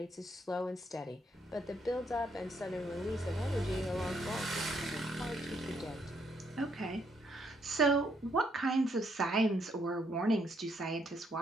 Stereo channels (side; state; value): both; normal; correlation 0.72